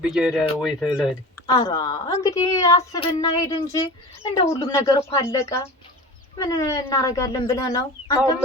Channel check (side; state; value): both; normal; correlation 0.36